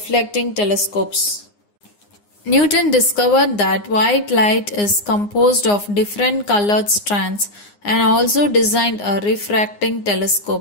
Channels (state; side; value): late; right; 9.7 ms